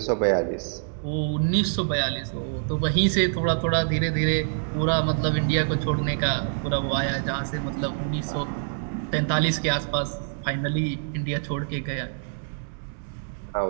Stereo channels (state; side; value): silent; left; digital silence